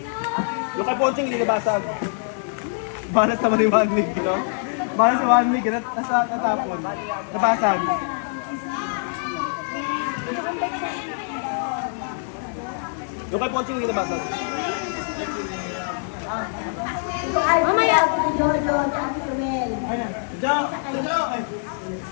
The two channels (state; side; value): silent; right; digital silence